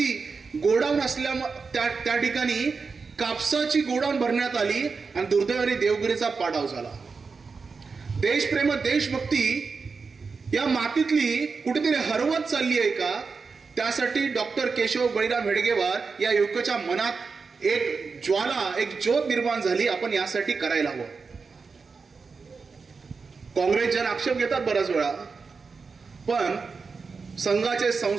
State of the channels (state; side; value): quieter; left; 4.8 dB